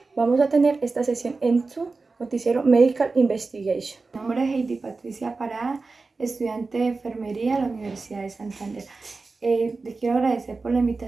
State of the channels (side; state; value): left; quieter; 3.9 dB